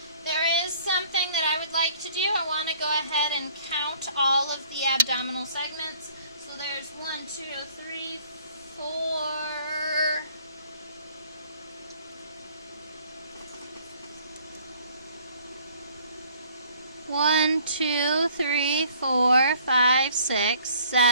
There is something that I would like to do. I want to go ahead and count all of the abdominal segments. So there's 1, 2, 3, 4. One, 2, 3, 4, 5, 6,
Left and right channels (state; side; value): inverted; both; correlation -0.57